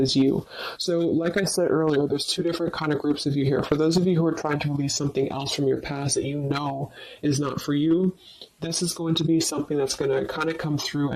you. So, like I said earlier, there's two different kind of groups of you here. For those of you who are trying to release something else from your past that you know is not for you, this is going to be something that's going to kind of come through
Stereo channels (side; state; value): both; identical; correlation 1.00